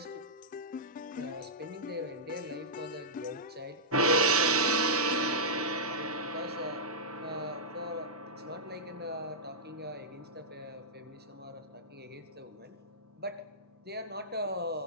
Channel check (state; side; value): normal; both; correlation -0.11